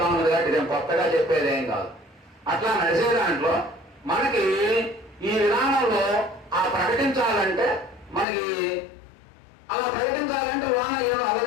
ఉన్నది కాబట్టి ఇదేం కొత్తగా చెప్పేది ఏం కాదు. అట్లా నడిచే దాంట్లో మనకి ఈ విధానంలో ఆ ప్రకటించాలంటే మనకి అలా ప్రకటించాలంటే లోన ఏదో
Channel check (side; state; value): right; drops out; at 8.2 s